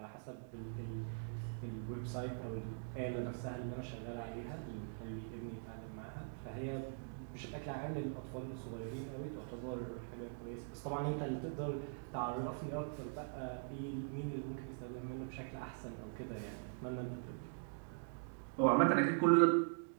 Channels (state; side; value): silent; left; digital silence